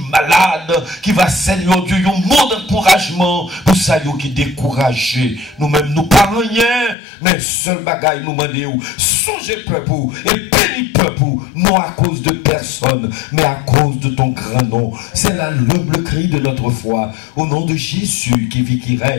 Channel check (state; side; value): drops out; right; at 7.0 s